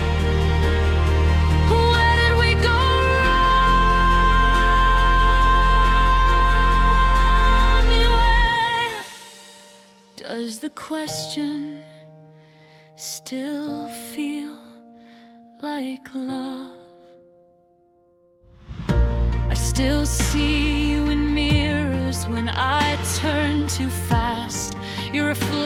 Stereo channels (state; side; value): identical; both; correlation 1.00